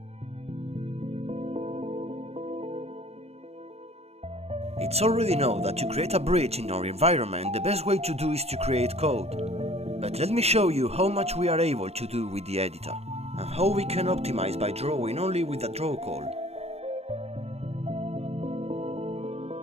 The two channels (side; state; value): left; late; 0.30 ms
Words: It's already known that to create a bridge in our environment, the best way to do is to create code. But let me show you how much we are able to do with the editor, and how we can optimize by drawing only with a draw call.